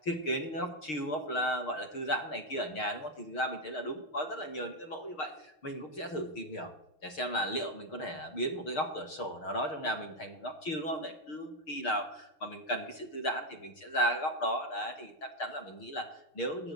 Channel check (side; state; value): right; late; 6.5 ms